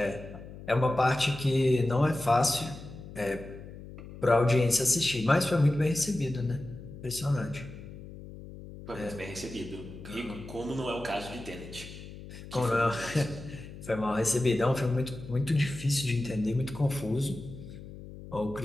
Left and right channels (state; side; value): noise; left; hum, 14 dB below the sound